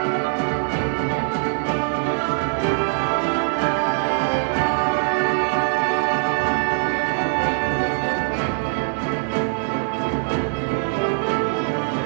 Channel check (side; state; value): left; silent; digital silence